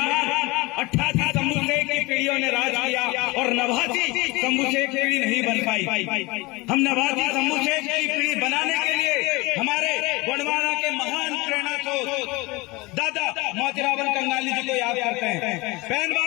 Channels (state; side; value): quieter; right; 23.8 dB